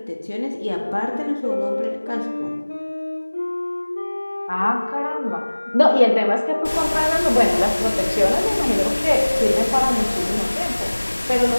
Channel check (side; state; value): both; inverted; correlation -1.00